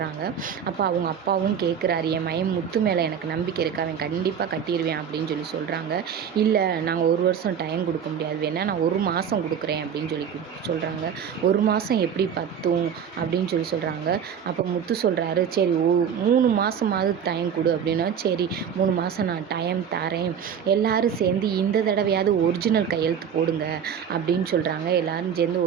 அப்போ அவங்க அப்பாவும் கேட்குறாரு, என் மயம் முத்து மேலே எனக்கு நம்பிக்கை இருக்கு, அவன் கண்டிப்பாக கட்டிடுவேன் அப்படின்னு சொல்கிறாங்க. இல்லை, நாங்கள் ஒரு வருஷம் டைம் கொடுக்க முடியாது, வேணா நான் 1 மாதம் கொடுக்குறேன் அப்படின்னு சொல்கிறாங்க. 1 மாதம் எப்படி பத்தும் அப்படின்னு சொல்கிறாங்க. அப்போ முத்து சொல்கிறாரு, சரி 3 மாதமாவது டைம் கொடு அப்படின்னா, சரி 3 மாதம் நான் டைம் தரேன், எல்லோரும் சேர்ந்து இந்த தடவையாவது ஒரிஜினல் கையெழுத்து போடுங்க அப்படின்னு சொல்கிறாங்க. எல்லோரும் சேர்ந்து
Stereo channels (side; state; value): left; quieter; 7.9 dB